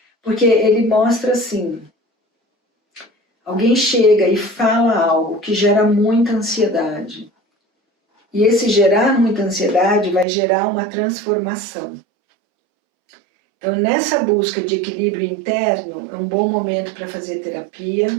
porque ele mostra assim, alguém chega e fala algo que gera muita ansiedade. E esse gerar muita ansiedade vai gerar uma transformação. Então, nessa busca de equilíbrio interno, é um bom momento para fazer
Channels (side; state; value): left; drops out; at 10.2 s